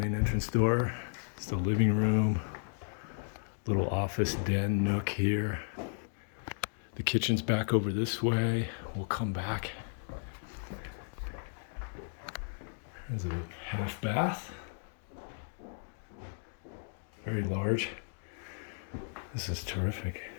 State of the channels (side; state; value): right; silent; digital silence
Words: entrance door, it's the living room, little office den nook here. The kitchen's back over this way. We'll come back. There's a half bath. Very large. This is terrific.